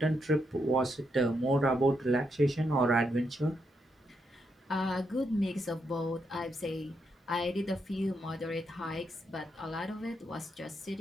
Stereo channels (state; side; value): normal; both; correlation 0.80